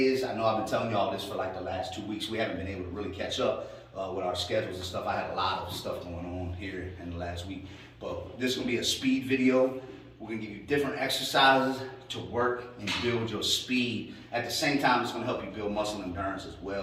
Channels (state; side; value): identical; both; correlation 1.00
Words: is, I know I've been telling you all this for like the last 2 weeks. We haven't been able to really catch up with our schedules and stuff. I had a lot of stuff going on here in the last week, but this is gonna be a speed video. We're gonna give you different exercises to work and build your speed. At the same time, it's gonna help you build muscle endurance as